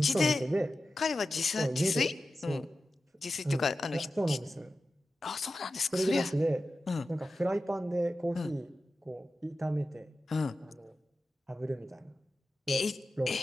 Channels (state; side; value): normal; both; correlation 0.92